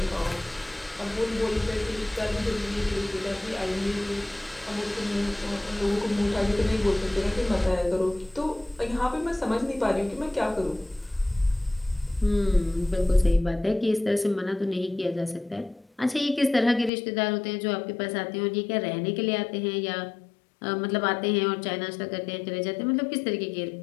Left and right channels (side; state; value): right; drops out; at 16.9 s